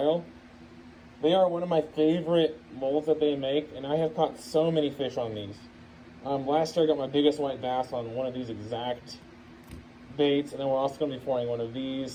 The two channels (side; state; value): both; identical; correlation 1.00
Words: They are one of my favorite molds that they make, and I have caught so many fish on these. Last year I got my biggest white bass on one of these exact baits, and then we're also going to be pouring one of